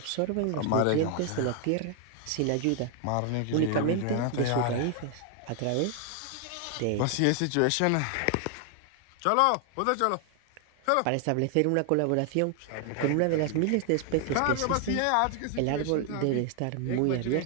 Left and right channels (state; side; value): different; both; correlation 0.00